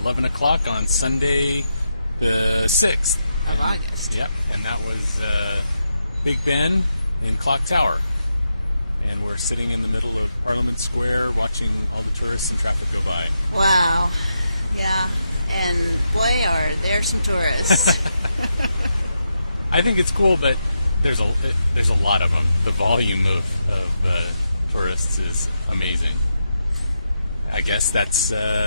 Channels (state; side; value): inverted; both; correlation -0.85